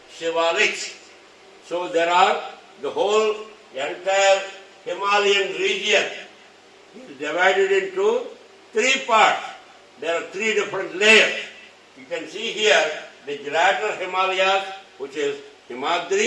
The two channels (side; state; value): both; identical; correlation 1.00